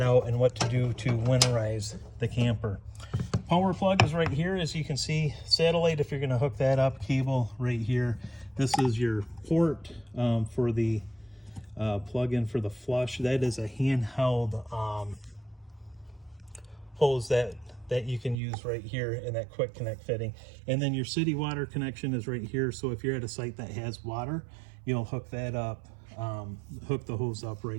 out and what to do to winterize the camper. Power plug is right here, as you can see. Satellite, if you're going to hook that up, cable right here. This is your port for the plug-in for the flush. That is a handheld hose that you can use right here in that quick connect fitting. And then your city water connection is right here. So if you're at a site that has water, you'll hook that up, hook the hose up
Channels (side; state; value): left; drops out; at 18.4 s